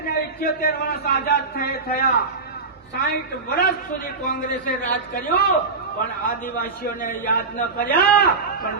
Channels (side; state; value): left; quieter; 4.1 dB